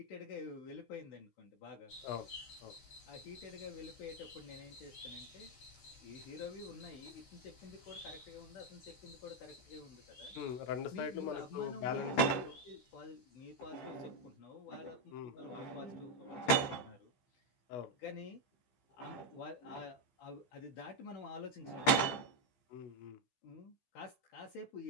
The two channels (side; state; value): right; late; 15 ms